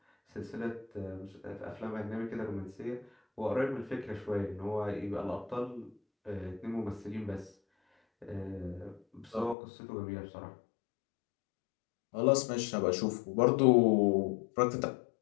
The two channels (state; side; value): drops out; right; at 9.6 s